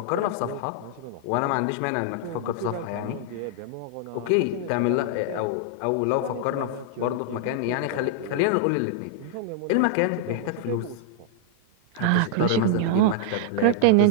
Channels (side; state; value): both; different; correlation -0.01